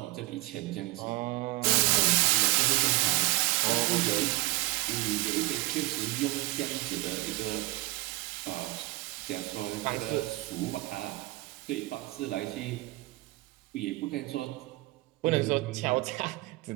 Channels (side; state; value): left; quieter; 21.6 dB